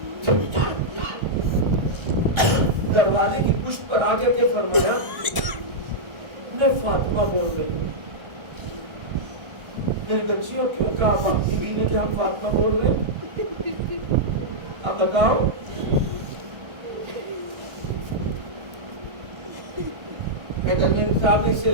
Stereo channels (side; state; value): left; late; 1.4 ms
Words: دروازے کی پشت پر آ کر کے فرمایا میں فاطمہ بول رہی ہوں. میری بچیوں کیوں کہا بیوی نے کہ ہم فاطمہ بول رہے ہیں؟ اب بتاؤ. حیدر صاحب نے اس